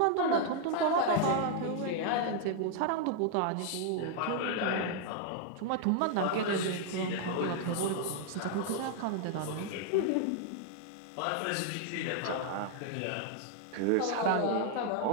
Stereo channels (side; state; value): both; different; correlation 0.00